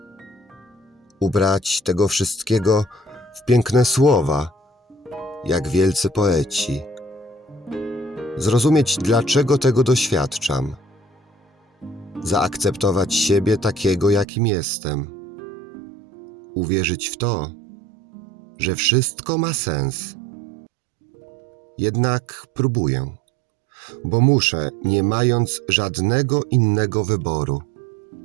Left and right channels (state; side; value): drops out; left; at 14.2 s